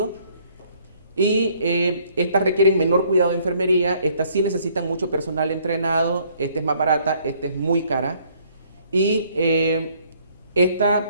Y estas requieren menor cuidado de enfermería, estas sí necesitan mucho personal entrenado, esta es más barata, esta es muy cara. Y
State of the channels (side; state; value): both; inverted; correlation -0.63